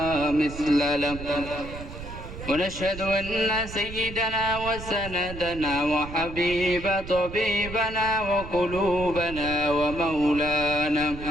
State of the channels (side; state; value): right; noise; rumble, 11 dB below the sound